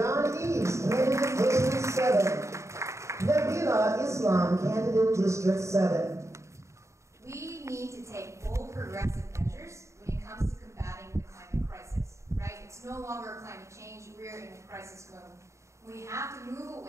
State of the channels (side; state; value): left; late; 0.14 ms